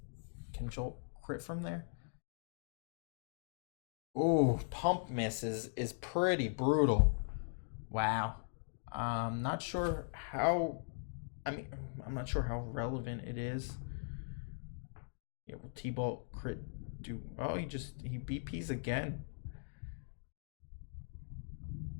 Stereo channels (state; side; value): silent; right; digital silence